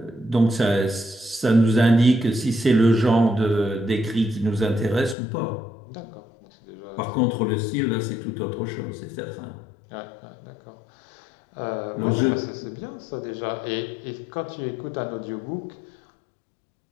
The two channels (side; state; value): right; drops out; at 5.2 s